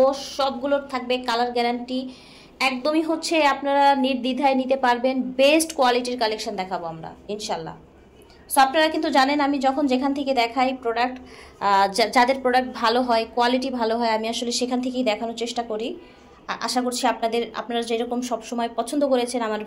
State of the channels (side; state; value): both; identical; correlation 1.00